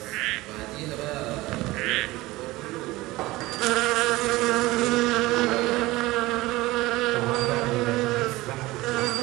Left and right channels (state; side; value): quieter; left; 19.4 dB